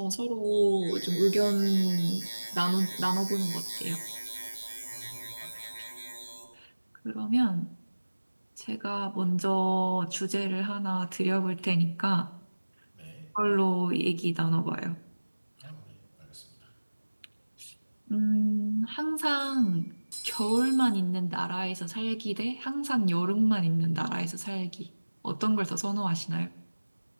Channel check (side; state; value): both; inverted; correlation -1.00